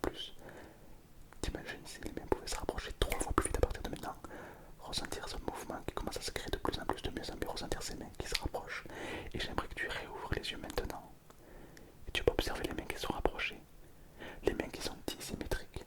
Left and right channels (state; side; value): identical; both; correlation 1.00